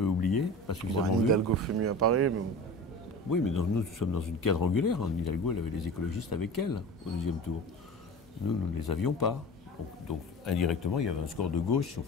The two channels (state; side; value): normal; both; correlation 0.34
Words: oublié, pas suffisamment vu. Hidalgo fait mieux à Paris, mais... Oui, mais nous sommes dans une quadrangulaire. Hidalgo, elle avait les écologistes avec elle au deuxième tour. Nous ne les avions pas. Donc, indirectement, il y avait un score de gauche, si on